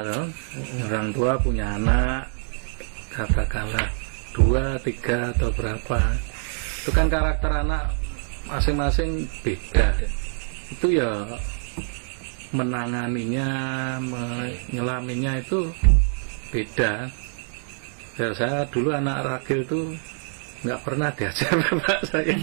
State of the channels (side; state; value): left; silent; 62 dB below the other